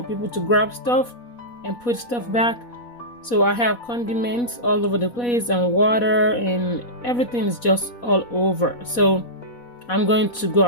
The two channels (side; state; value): right; late; 4.1 ms